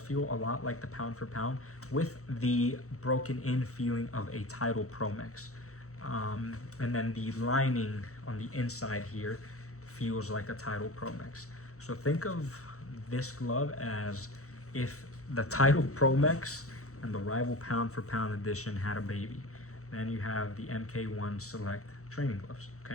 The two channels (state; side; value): late; right; 0.64 ms